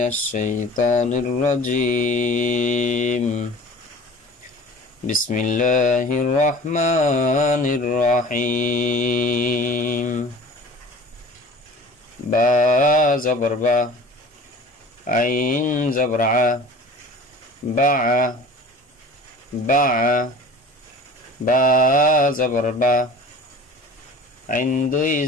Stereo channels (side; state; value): both; normal; correlation 0.42